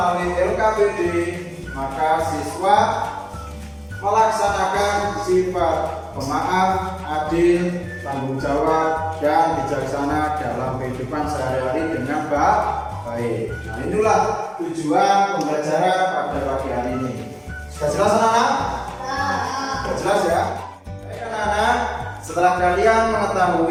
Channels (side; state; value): both; identical; correlation 1.00